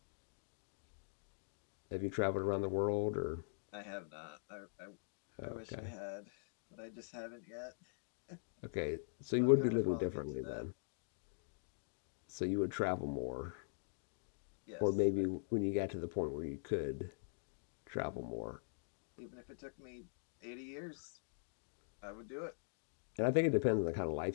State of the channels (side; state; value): right; silent; digital silence